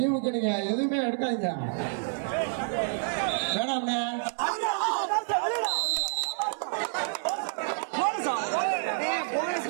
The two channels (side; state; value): left; silent; 59 dB below the other